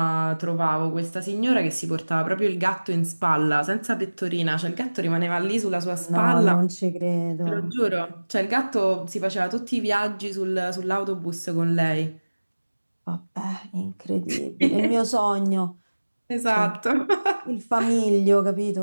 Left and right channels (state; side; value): inverted; both; correlation -1.00